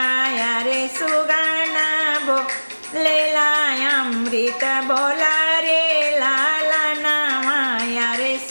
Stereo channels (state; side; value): inverted; both; correlation -1.00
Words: रे सुगना बोलेला अमृत बोला रे लाला नामा रे